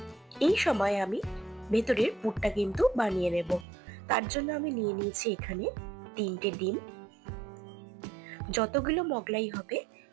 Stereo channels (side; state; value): left; drops out; at 3.7 s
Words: এই সময় আমি ভেতরের পুরটা কিন্তু বানিয়ে নেব। তার জন্য আমি নিয়ে নিয়েছি এখানে 3টে ডিম। যতগুলো মোগলাই হবে